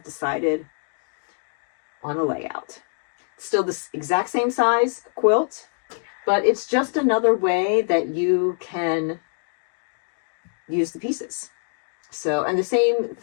decided on a layout. Still this exact same size quilt, but it's just another way that you can use the pieces. So, and the same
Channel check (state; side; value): silent; right; 62 dB below the other